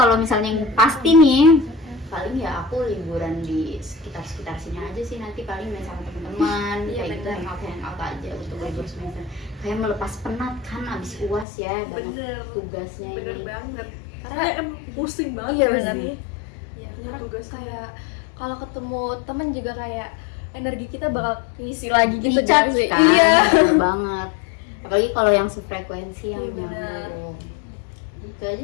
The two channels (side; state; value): right; drops out; at 11.5 s